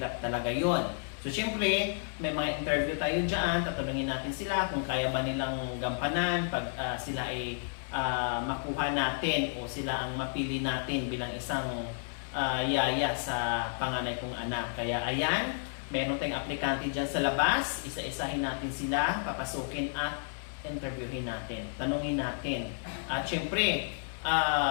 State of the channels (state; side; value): silent; right; digital silence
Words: talaga yon. So syempre, may mga interview tayo dyan, tatanungin natin sila kung kaya ba nilang gampanan pag sila ay makuha natin o sila ang mapili natin bilang isang yaya sa panganay kong anak. Kaya ayan, meron tayong aplikante dyan sa labas, isa-isahin natin sila, papasukin at interviewin natin, tanungin natin. At syempre,